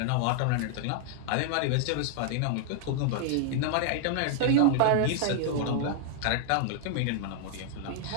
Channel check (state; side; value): different; both; correlation -0.01